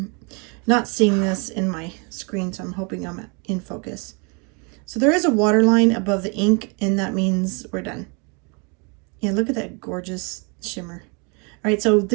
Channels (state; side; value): quieter; left; 33.4 dB